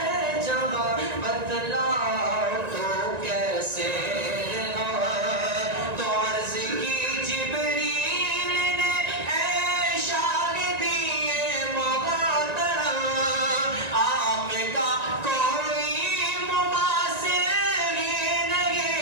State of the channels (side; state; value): left; late; 1.9 ms